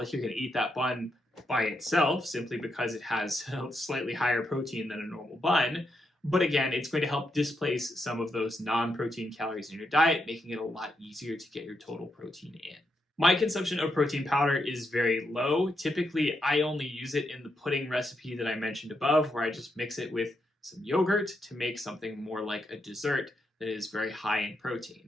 you're going to eat that bun by itself simply because it has slightly higher protein than a normal bun. But again, it's going to help displace some of those non-protein calories in your diet, making it a lot easier to get your total protein in. My consumption of protein powder is very low. Typically, I only use it in the pudding recipe that I mentioned above, where I just mix it with some yogurt to make something more like a dessert that is very high in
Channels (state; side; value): normal; both; correlation 0.82